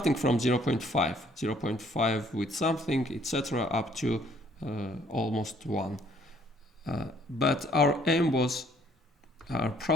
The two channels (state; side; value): normal; both; correlation 0.63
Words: from 0.5 with something, etc., up to almost 1. But our